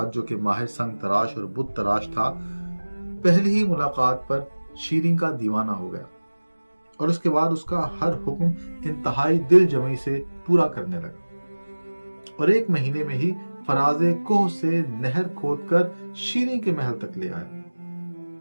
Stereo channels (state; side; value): inverted; both; correlation -1.00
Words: जो कि माहिर संग तराश और बुत तराश था, पहली ही मुलाकात पर शीरीं का दीवाना हो गया और उसके बाद उसका हर हुक्म इंतहाई दिल जमी से पूरा करने लगा। और एक महीने में ही फराजे कोह से नहर खोदकर शीरीं के महल तक ले आया।